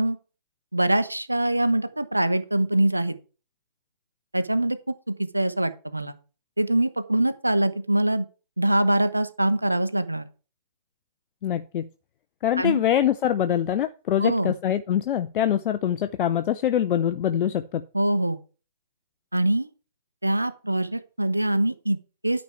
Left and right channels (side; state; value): both; inverted; correlation -0.69